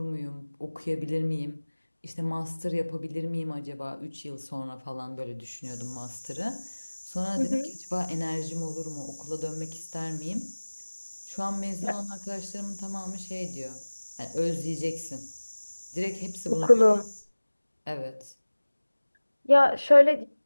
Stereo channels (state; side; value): inverted; both; correlation -1.00